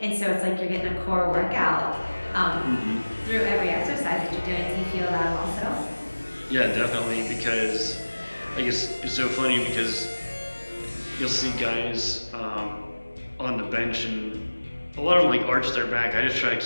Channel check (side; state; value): both; inverted; correlation -1.00